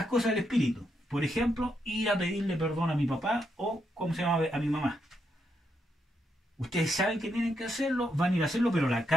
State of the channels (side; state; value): both; normal; correlation 0.80